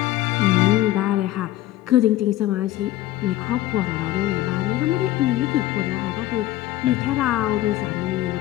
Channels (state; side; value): quieter; right; 14.9 dB